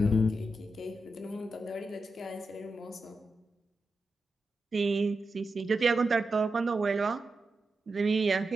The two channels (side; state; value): both; normal; correlation 0.89